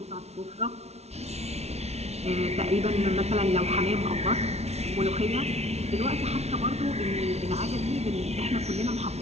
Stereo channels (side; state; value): left; late; 0.31 ms